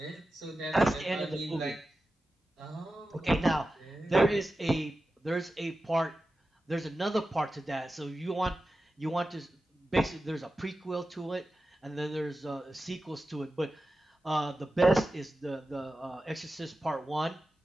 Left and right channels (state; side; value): normal; both; correlation 0.94